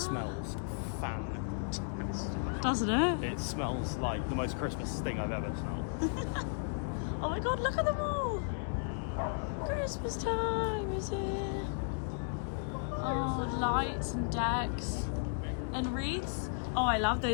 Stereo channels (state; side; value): silent; right; digital silence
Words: fantastic. Doesn't it? It smells like the most Christmas thing I've ever smelled. Oh my god, look at them all! Christmas time is here. Oh, lights and decks and wreaths. Oh, I love